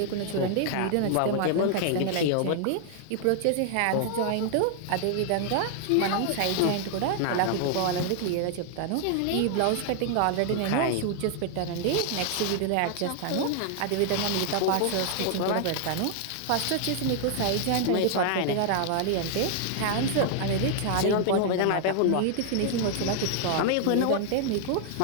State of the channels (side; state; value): both; different; correlation 0.00